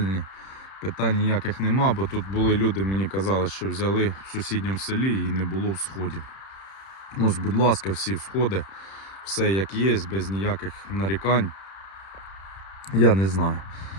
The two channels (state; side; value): late; right; 31 ms